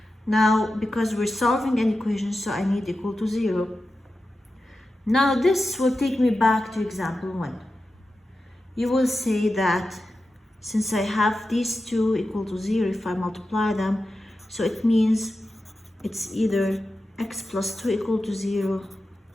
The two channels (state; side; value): normal; both; correlation 0.92